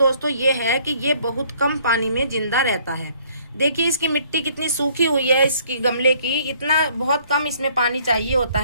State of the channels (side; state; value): both; inverted; correlation -0.61